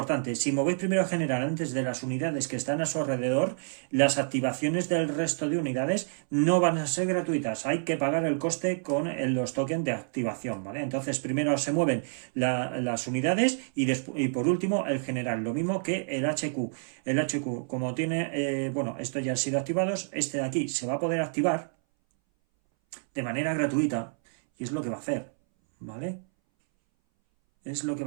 si movéis primero a general antes de las unidades que están a su alrededor, las activaciones del resto de unidades no van a ser gratuitas, hay que pagar el coste con los tokens de activación, ¿vale? Entonces primero se mueven las unidades y por último el general, lo mismo que el HQ. El HQ, como tiene, bueno, esto ya ha sido activado, este de aquí se va a poder activar de manera gratuita y es lo que va a hacer, ¿vale? Es lo que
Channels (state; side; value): silent; left; 59 dB below the other